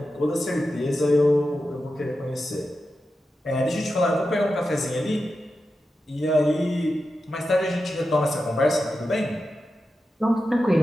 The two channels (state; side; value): normal; both; correlation 0.90